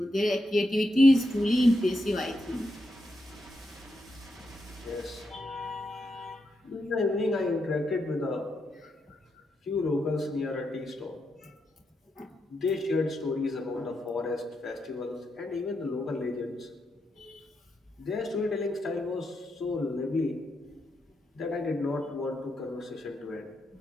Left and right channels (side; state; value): both; normal; correlation 0.83